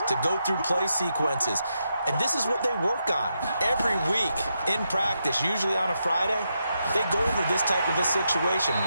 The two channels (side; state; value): both; inverted; correlation -0.83